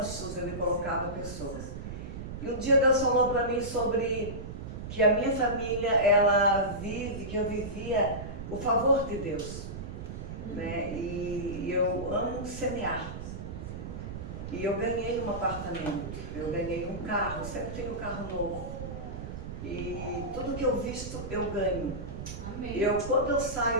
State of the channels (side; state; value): right; noise; rumble, 8 dB below the sound